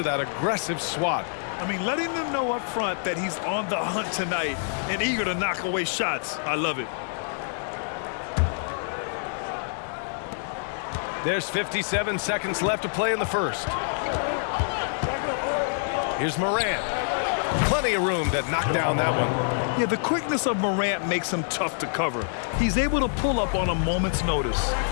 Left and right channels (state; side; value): silent; right; digital silence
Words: that aggressive swat. I mean, letting them know up front that he's on the hunt tonight and eager to knock away shots. I love it. There's 57 seconds left to play in the first. Here's Morant. Plenty of room to knock down that one. Yeah, the quickness of Morant makes him tough to cover. He's able to pull up on a moment's notice.